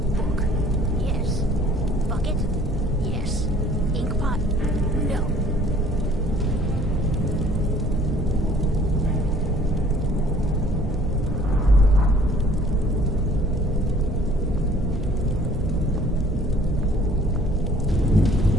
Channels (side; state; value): both; normal; correlation 0.55